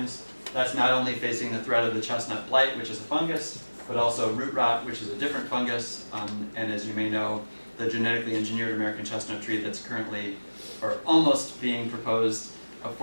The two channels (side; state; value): both; inverted; correlation -1.00